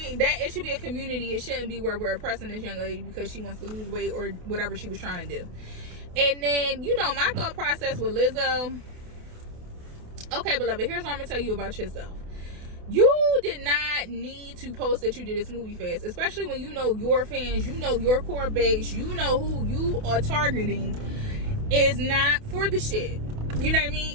That it should be a community. It shouldn't be where we're oppressing this young lady because she wants to lose weight or whatever she was trying to do. And then, my thought process with Lizzo. Okay, beloved, here's what I'm gonna tell you about yourself. You did not need to post that you did a smoothie fast, especially when your fans, your core base, who you are targeting is not for the shit. You know what I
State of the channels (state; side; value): late; left; 28 ms